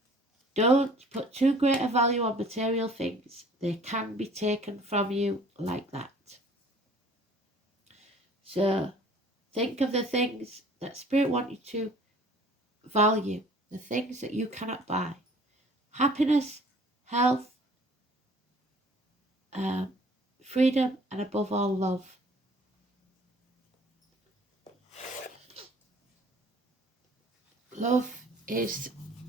Don't put too great a value on material things. They can be taken from you like that. So think of the things that Spirit wants you to value, the things that you cannot buy. Happiness, health, freedom, and above all, love. Love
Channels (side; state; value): both; normal; correlation 0.52